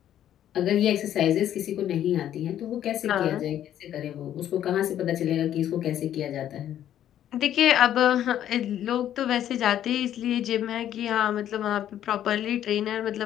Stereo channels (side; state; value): right; quieter; 11.1 dB